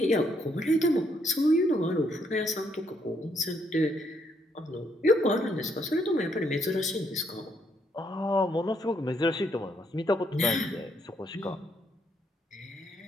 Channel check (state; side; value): normal; both; correlation 0.73